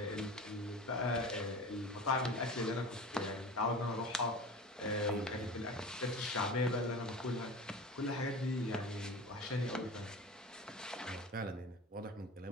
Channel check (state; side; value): normal; both; correlation 0.34